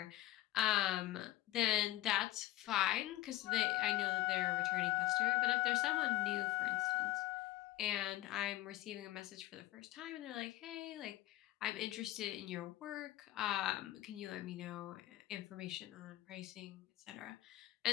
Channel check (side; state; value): right; quieter; 15.9 dB